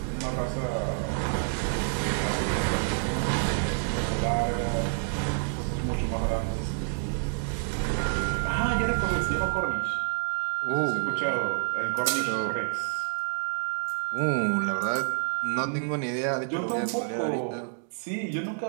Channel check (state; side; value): silent; left; digital silence